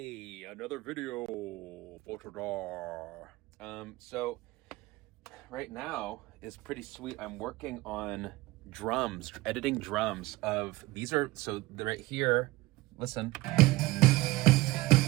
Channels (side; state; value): left; quieter; 19.8 dB